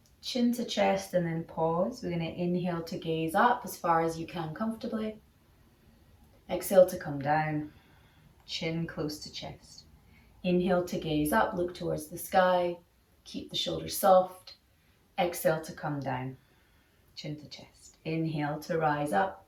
chin to chest, and then pause. We're going to inhale to gaze up as far as you can comfortably. Exhale to come down, chin close to chest. Inhale to gaze up, look towards the sky, keep the shoulders soft. Exhale to come down, chin to chest. Inhale to rise up,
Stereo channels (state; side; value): identical; both; correlation 1.00